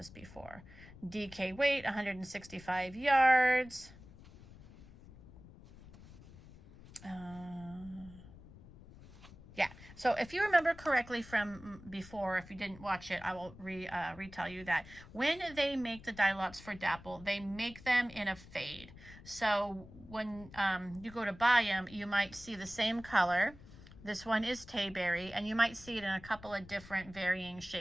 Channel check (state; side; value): noise; left; rumble, 19 dB below the sound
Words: before. DK weight, 165 yards. Yeah, so if you remember correctly from before, if you didn't watch it, I will retell you that when they make the dye lots for Dapple, they make them in a fade. So when you go to buy them, you might see the same color. This one is Tayberry, and you might see it in a couple of different varying